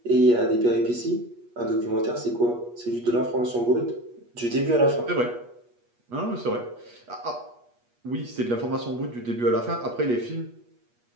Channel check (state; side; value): late; left; 8.4 ms